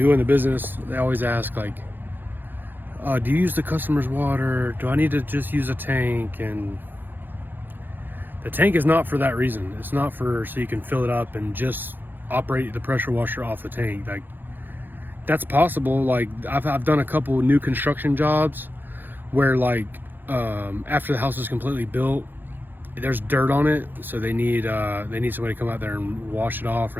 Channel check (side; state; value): left; late; 0.092 ms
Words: in the business, they always ask like, do you use the customer's water? Do I need to just use a tank? And the tank is not for that reason. It's not for so you can fill it up and just operate the pressure washer off the tank. Like, that's possible. Like I've done a couple new construction jobs where like after the house is completely built, there's dirt on it, so they need somebody to come out there and wash it off,